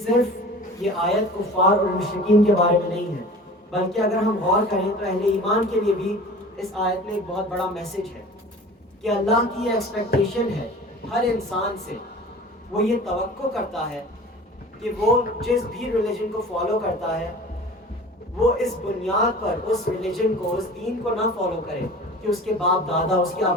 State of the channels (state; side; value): normal; both; correlation 0.40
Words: یہ آیت کفار اور مشرکین کے بارے میں نہیں ہے، بلکہ اگر ہم غور کریں تو اہل ایمان کے لیے بھی اس آیت میں ایک بہت بڑا میسج ہے کہ اللہ کی یہ ایکسپیکٹیشن ہے ہر انسان سے. وہ یہ توقع کرتا ہے کہ وہ جس بھی ریلیجن کو فالو کرتا ہے وہ اس بنیاد پر اس ریلیجن کو، اس دین کو نہ فالو کرے کہ اس کے باپ دادا، اس کے